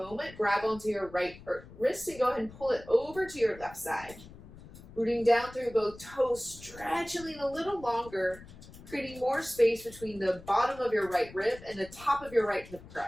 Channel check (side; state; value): left; noise; rumble, 18 dB below the sound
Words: Grab onto your right wrist and go ahead and pull it over to your left side. Rooting down through both toes, stretching a little longer, creating more space between the bottom of your right rib and the top of your right hip